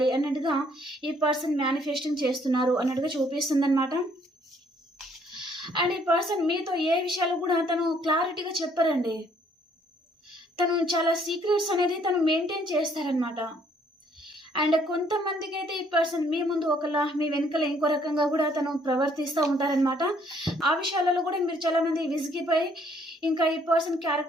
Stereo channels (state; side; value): normal; both; correlation 0.65